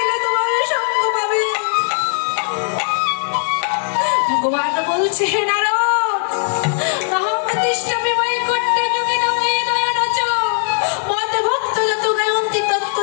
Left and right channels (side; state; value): right; silent; 63 dB below the other